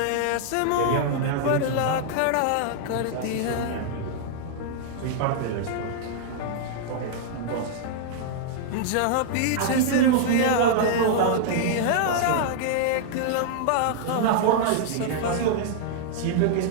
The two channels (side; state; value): both; different; correlation -0.01